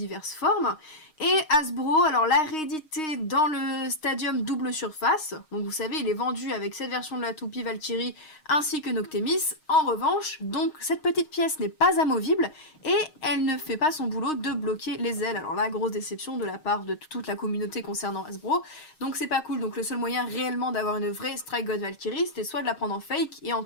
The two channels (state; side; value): late; right; 6.4 ms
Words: formes. Et Hasbro, alors l'a réédité dans le Stadium double surface. Donc vous savez, il est vendu avec cette version de la toupie Valkyrie ainsi que Noctemis. En revanche, donc cette petite pièce n'est pas amovible et elle ne fait pas son boulot de bloquer les ailes. Alors là, grosse déception de la part de toute la communauté concernant Hasbro. Donc c'est pas cool. Donc le seul moyen réellement d'avoir une vraie Strike God Valkyrie, c'était soit de la prendre en fake, et